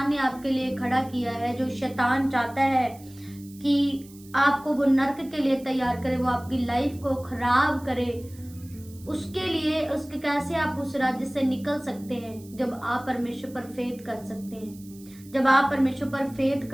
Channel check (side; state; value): right; noise; hiss, 23 dB below the sound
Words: ने आपके लिए खड़ा किया है, जो शैतान चाहता है कि आपको वो नर्क के लिए तैयार करे, वो आपकी लाइफ को खराब करे, उसके लिए, उसके कैसे आप उस राज्य से निकल सकते हैं? जब आप परमेश्वर पर फेथ कर सकते हैं, जब आप परमेश्वर पर फेथ